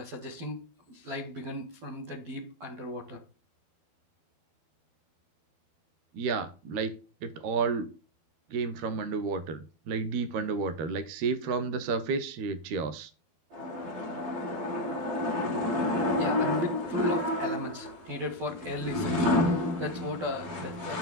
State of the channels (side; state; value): left; late; 12 ms